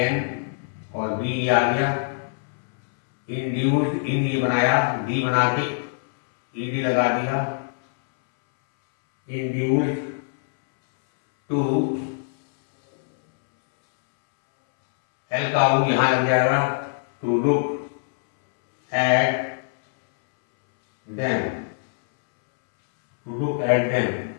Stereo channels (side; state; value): right; silent; 63 dB below the other